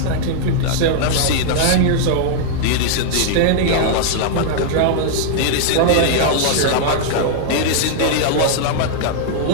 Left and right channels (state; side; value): different; both; correlation -0.01